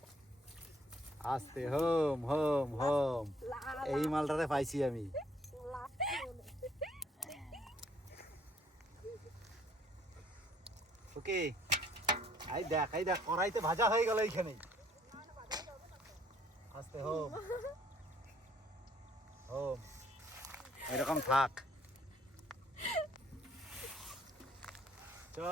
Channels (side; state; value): both; normal; correlation 0.64